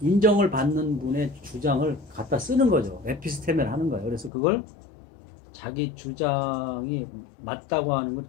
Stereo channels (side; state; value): right; drops out; at 4.3 s